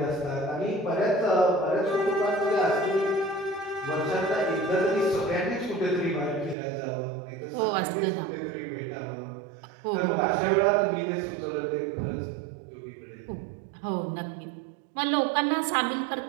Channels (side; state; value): left; drops out; at 6.6 s